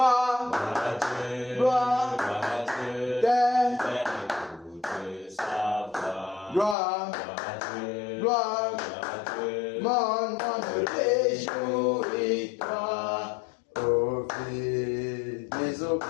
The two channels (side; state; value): right; drops out; at 6.8 s